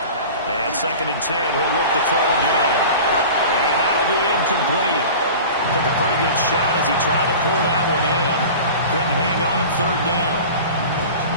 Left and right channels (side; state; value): both; inverted; correlation -0.37